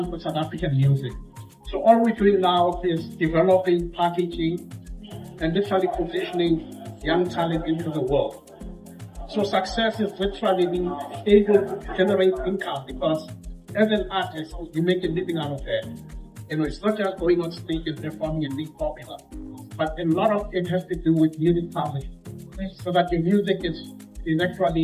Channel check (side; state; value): both; identical; correlation 1.00